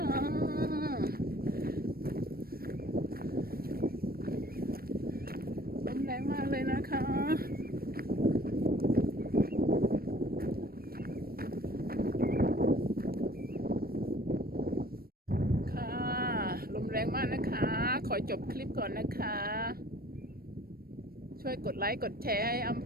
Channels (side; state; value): left; late; 0.44 ms